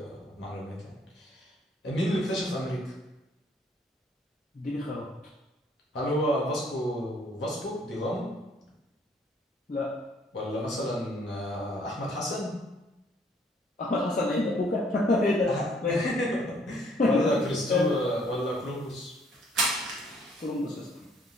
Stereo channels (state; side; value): normal; both; correlation 0.63